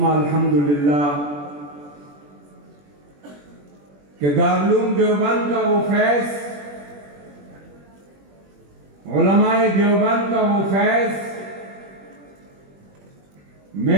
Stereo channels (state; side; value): late; left; 21 ms